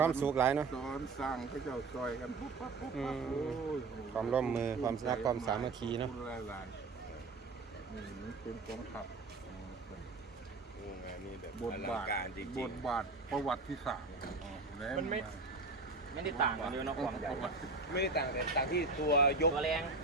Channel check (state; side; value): quieter; left; 3.7 dB